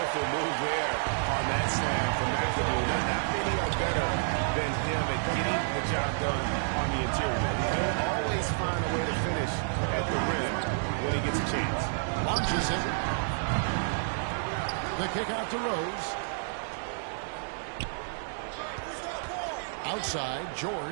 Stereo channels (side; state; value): left; silent; digital silence